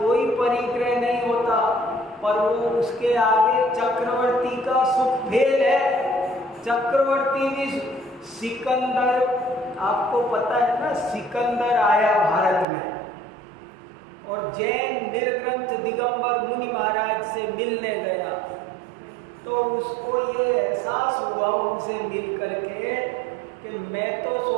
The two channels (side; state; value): left; drops out; at 12.7 s